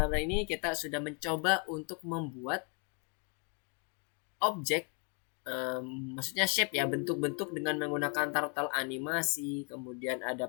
hari ini, kita sudah mencoba untuk membuat objek, maksudnya shape ya, bentuk-bentuk dengan menggunakan turtle animasi, kemudian ada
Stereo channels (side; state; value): right; quieter; 37.9 dB